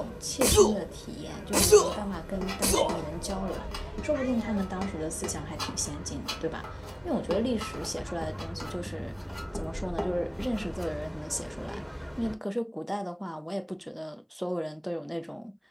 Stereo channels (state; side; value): identical; both; correlation 1.00